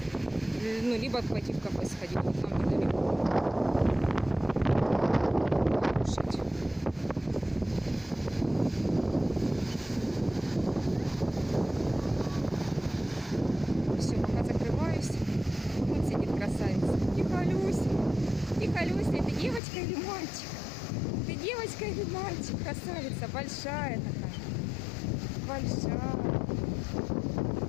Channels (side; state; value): right; drops out; at 19.6 s